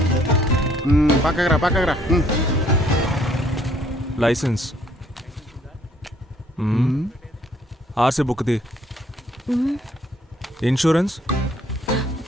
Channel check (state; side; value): normal; both; correlation 0.64